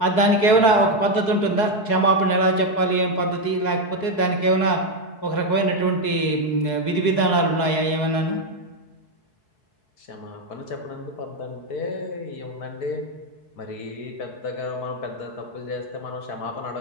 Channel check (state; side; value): late; right; 4.7 ms